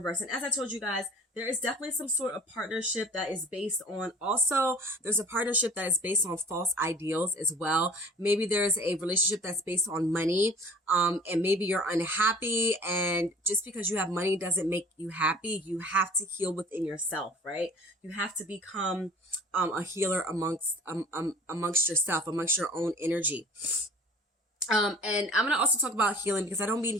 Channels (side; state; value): both; normal; correlation 0.46